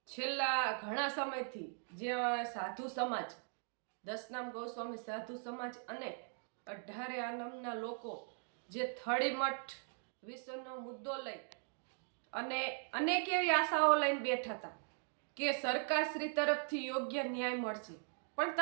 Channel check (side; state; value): left; silent; 51 dB below the other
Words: છેલ્લા ઘણા સમયથી જે સાધુ સમાજ, દસનામ ગોસ્વામી સાધુ સમાજ અને 18 આનમના લોકો જે થળીમઠ વિશ્વનો મુદ્દો લઈ અને અનેક એવી આશાઓ લઈને બેઠા હતા કે સરકારશ્રી તરફથી યોગ્ય ન્યાય મળશે. પણ